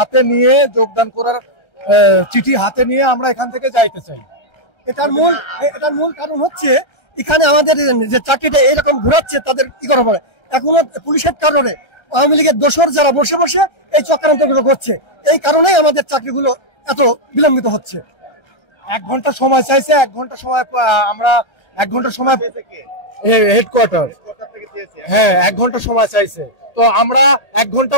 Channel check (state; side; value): late; right; 1.3 ms